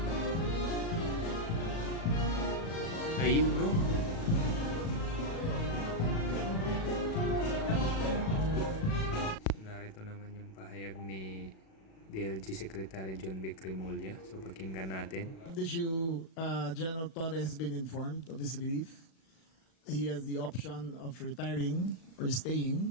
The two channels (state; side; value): late; right; 37 ms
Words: Ayun, no? Narito naman yung pahayag ni DLG Secretary John B. Crimolia. So, pakinggan natin. This issue, General Torre has been informed of his relief. He has the option of retiring or